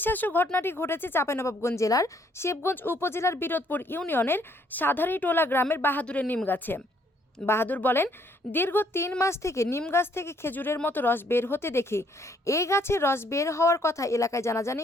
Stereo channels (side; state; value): both; normal; correlation 0.67